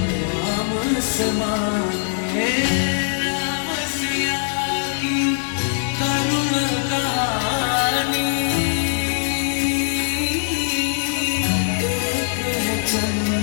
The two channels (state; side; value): silent; right; 65 dB below the other